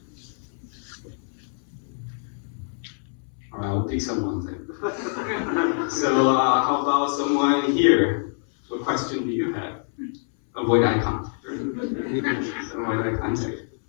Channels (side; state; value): right; silent; 61 dB below the other